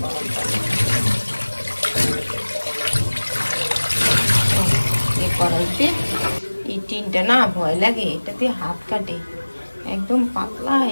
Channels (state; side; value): inverted; both; correlation -1.00